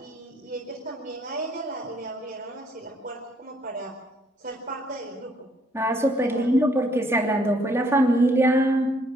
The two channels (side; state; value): both; normal; correlation 0.67